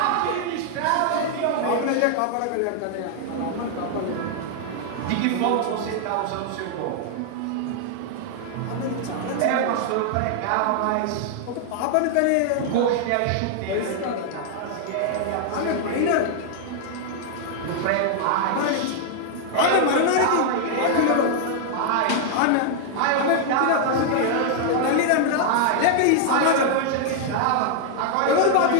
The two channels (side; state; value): both; different; correlation -0.01